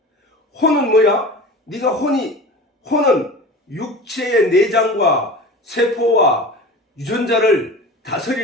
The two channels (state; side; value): normal; both; correlation 0.35